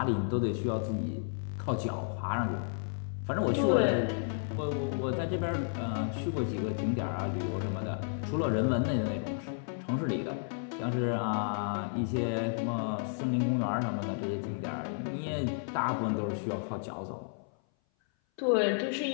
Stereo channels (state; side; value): silent; right; 56 dB below the other